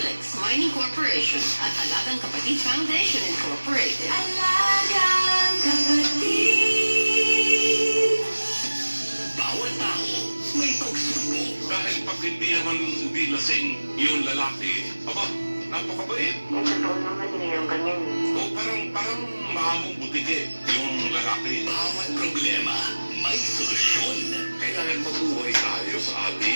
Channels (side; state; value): both; inverted; correlation -1.00